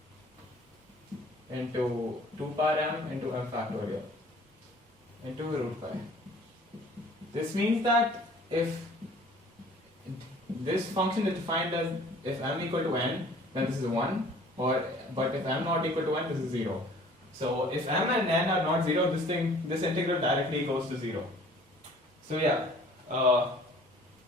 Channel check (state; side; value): normal; both; correlation 0.52